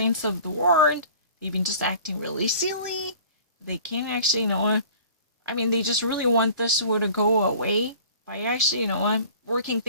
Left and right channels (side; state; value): both; inverted; correlation -0.45